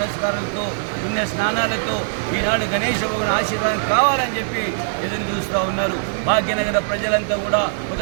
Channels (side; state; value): left; silent; digital silence